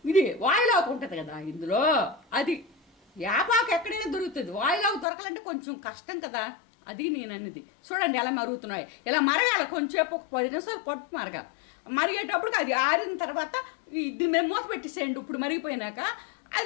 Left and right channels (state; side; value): drops out; right; at 5.1 s